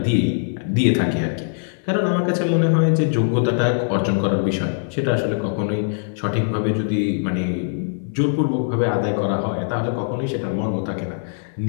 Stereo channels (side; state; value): right; silent; digital silence